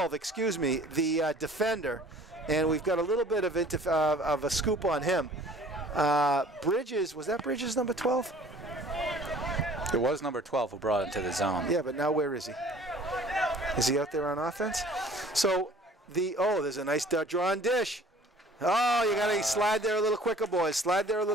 the defender. And we've got a little bit of a scoop on him. Bridges, was that Bridges number 12? It was number 12 who brought him to the zone. Yeah, but now where is he? Is he out there on offense? So, there's a nice drawn dish. Oh, you got to slide there a little quicker, boys. Slide there a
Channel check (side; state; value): both; normal; correlation 0.51